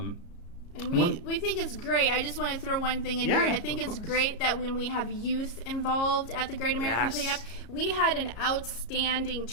we think it's great. I just want to throw one thing in here. I think it's great that when we have youth involved at the Great American Cleanup, we had an outstanding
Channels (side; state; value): right; late; 34 ms